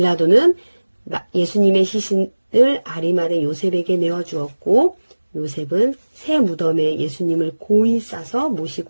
예수님의 시신을 아리마대 요셉에게 내어주었고 요셉은 새 무덤에 예수님을 고이 싸서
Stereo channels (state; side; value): inverted; both; correlation -1.00